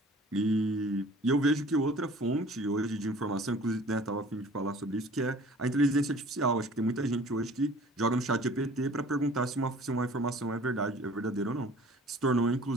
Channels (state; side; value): normal; both; correlation 0.48